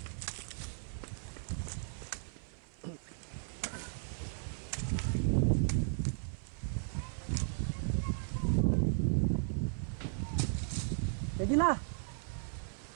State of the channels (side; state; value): left; silent; 54 dB below the other